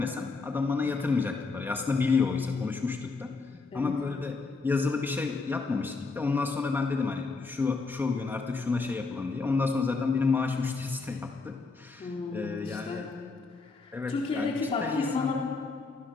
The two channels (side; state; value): right; quieter; 4.1 dB